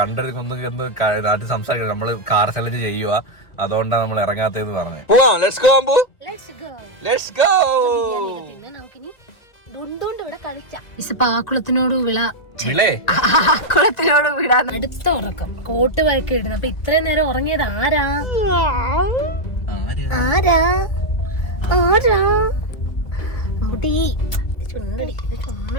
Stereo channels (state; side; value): late; right; 2.3 ms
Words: ആദ്യം സംസാരിക്കണം. നമ്മള് കാർ ചലഞ്ച് ചെയ്യുക, അതുകൊണ്ടാണ് നമ്മൾ ഇറങ്ങാത്തതെന്ന് പറഞ്ഞു. പോവാം, let's go Ambu, let's go. ആക്കുളത്തിനോട് വിടാൻ അടുത്ത ഉറക്കം കോട്ട് വഴക്കി ഇടുന്നു. അപ്പൊ ഇത്രയും നേരം ഉറങ്ങിയത് ആരാ? ആരാ ആരാ?